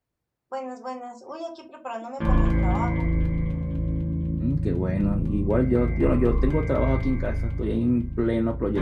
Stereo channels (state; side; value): identical; both; correlation 1.00